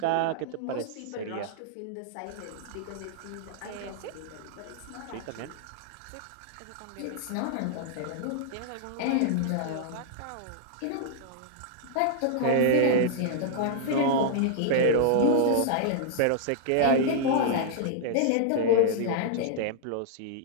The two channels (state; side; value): different; both; correlation -0.01